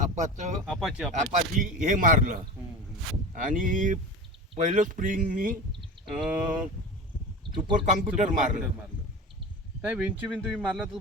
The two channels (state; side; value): normal; both; correlation 0.30